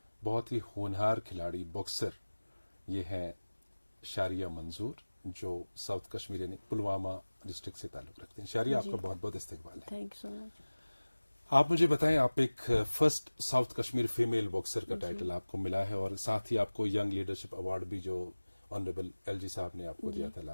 बहुत ही होनहार खिलाड़ी बॉक्सर। ये हैं शारिया मंजूर, जो साउथ कश्मीर यानी पुलवामा डिस्ट्रिक्ट से ताल्लुक़ रखते हैं। शारिया, आपका बहुत बहुत इस्तकबाल है। आप मुझे बताएं, आप एक first south Kashmir female boxer का टाइटल आपको मिला है और साथ ही आपको यंग लीडरशिप अवार्ड भी जो ऑनरेबल एलजी साहब ने आपको दिया था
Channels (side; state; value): both; inverted; correlation -1.00